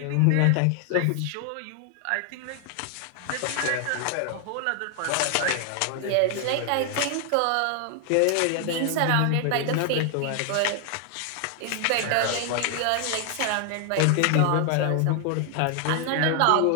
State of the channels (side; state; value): both; different; correlation 0.00